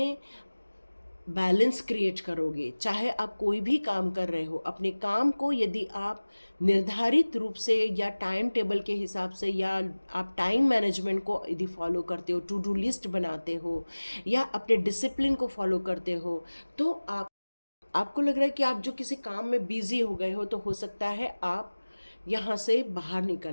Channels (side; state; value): both; inverted; correlation -1.00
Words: बैलेंस क्रिएट करोगे, चाहे आप कोई भी काम कर रहे हो, अपने काम को यदि आप निर्धारित रूप से या टाइम टेबल के हिसाब से, या आप टाइम मैनेजमेंट को यदि फॉलो करते हो, टू डू लिस्ट बनाते हो, या अपने डिसिप्लिन को फॉलो करते हो, तो आपको लग रहा है कि आप जो किसी काम में बिजी हो गए हो, तो हो सकता है आप यहाँ से बाहर